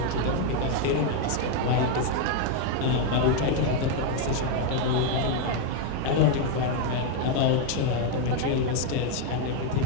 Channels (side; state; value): both; different; correlation 0.01